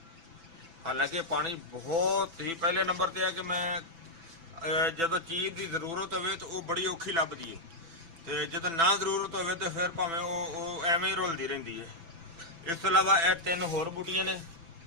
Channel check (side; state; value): left; late; 6.0 ms